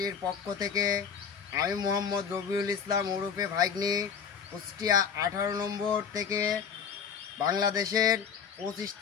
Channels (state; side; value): quieter; right; 6.9 dB